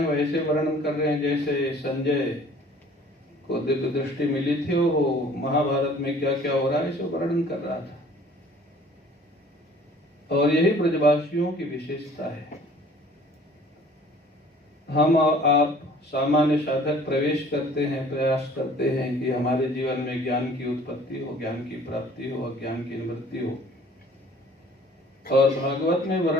वैसे वर्णन कर रहे हैं जैसे संजय को दिव्य दृष्टि मिली थी, वो महाभारत में क्या क्या हो रहा है इसे वर्णन कर रहा था। और यही ब्रजवासियों की विशेषता है। हम और आप सामान्य साधक प्रवेश करते हैं, प्रयास करते हैं कि हमारे जीवन में ज्ञान की उत्पत्ति हो, ज्ञान की प्राप्ति हो, अज्ञान की निवृत्ति हो। और भागवत में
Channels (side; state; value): both; normal; correlation 0.52